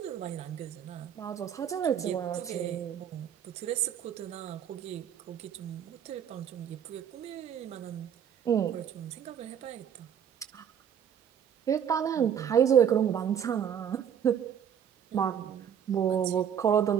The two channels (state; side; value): quieter; left; 8.6 dB